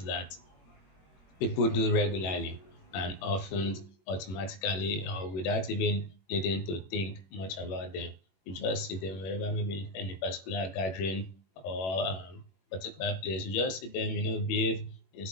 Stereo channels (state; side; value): late; right; 21 ms